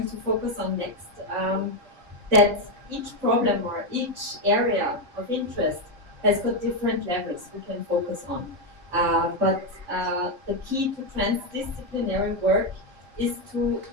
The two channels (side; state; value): left; late; 3.7 ms